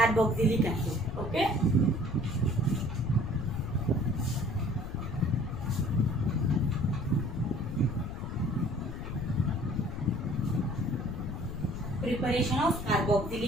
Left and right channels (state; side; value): noise; left; rumble, 7 dB below the sound